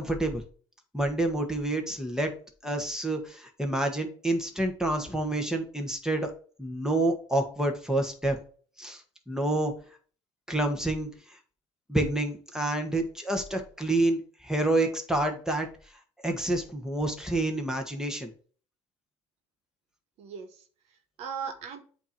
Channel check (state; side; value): normal; both; correlation 0.67